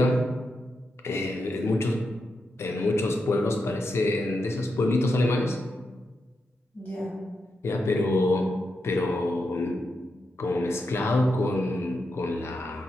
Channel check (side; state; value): both; normal; correlation 0.86